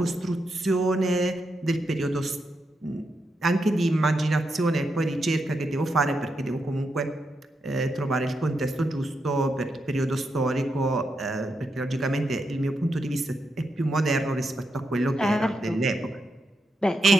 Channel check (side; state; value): both; normal; correlation 0.84